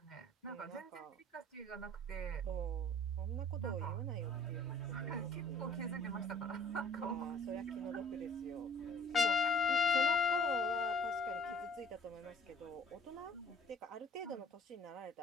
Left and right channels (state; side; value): normal; both; correlation 0.50